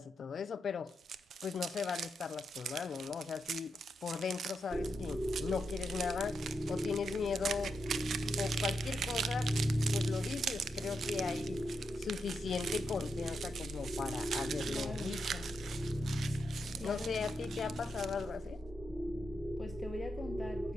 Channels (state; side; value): normal; both; correlation 0.84